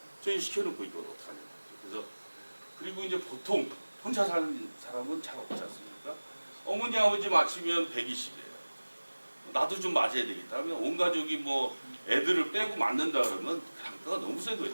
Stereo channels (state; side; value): inverted; both; correlation -1.00